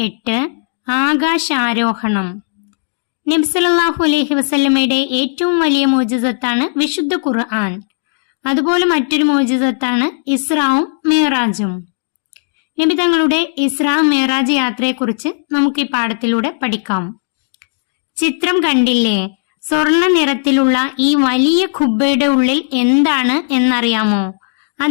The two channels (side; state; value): right; silent; digital silence